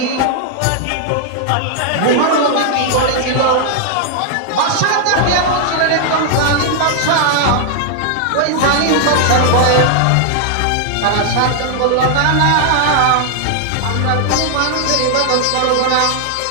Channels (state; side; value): different; both; correlation 0.00